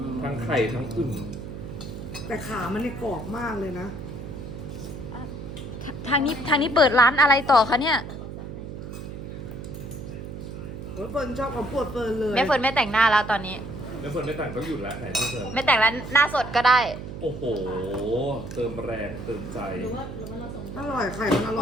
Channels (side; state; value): right; noise; hum, 9 dB below the sound